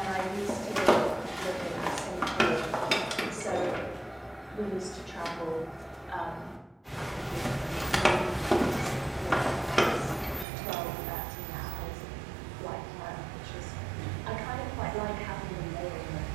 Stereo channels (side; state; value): left; drops out; at 10.5 s